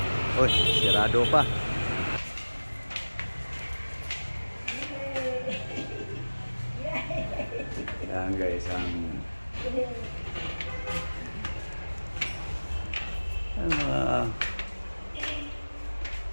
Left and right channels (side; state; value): both; inverted; correlation -1.00